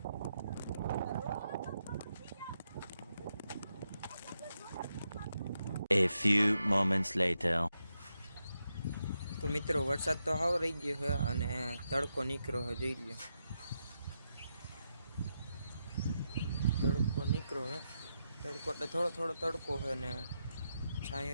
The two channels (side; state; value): both; inverted; correlation -0.85